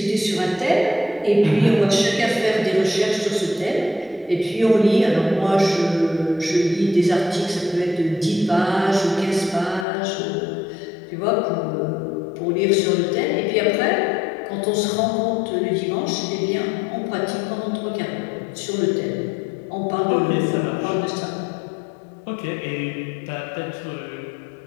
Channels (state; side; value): drops out; right; at 9.9 s